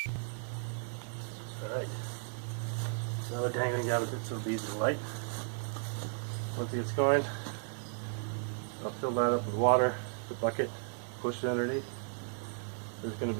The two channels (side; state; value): left; silent; 54 dB below the other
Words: Alright, so we're dangling down a bit so it'll be easy to light. Once it gets going, I'll fill that up with water, the bucket, push it underneath. There's going to